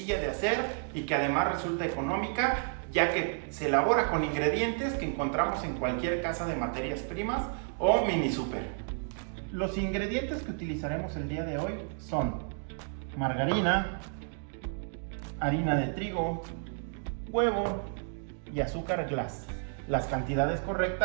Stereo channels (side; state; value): left; silent; 57 dB below the other